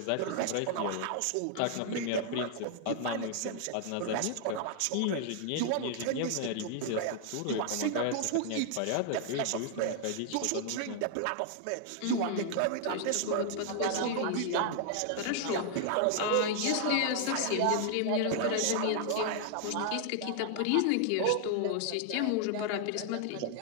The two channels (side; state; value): both; different; correlation 0.00